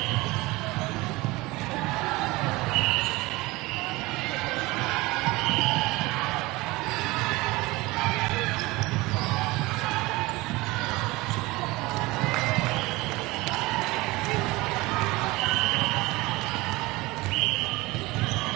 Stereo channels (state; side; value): quieter; left; 21.5 dB